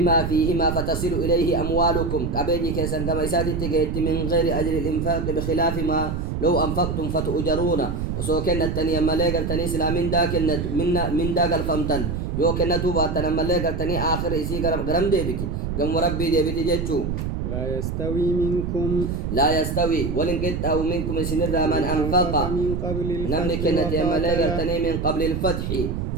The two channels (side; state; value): right; noise; rumble, 3 dB below the sound